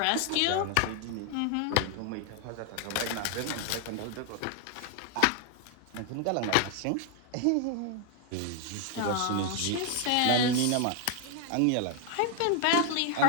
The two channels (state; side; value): different; both; correlation 0.00